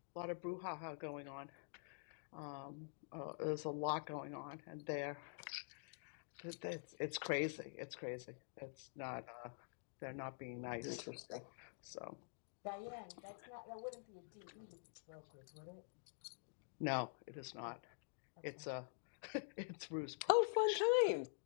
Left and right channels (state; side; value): silent; right; digital silence